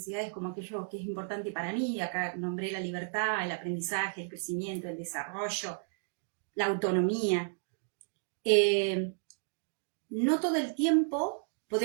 como aquello que es importante para mí, acá nombré la libertad, el aprendizaje, el crecimiento, el desarrollo, la autonomía, no todo el tiempo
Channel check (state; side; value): silent; left; digital silence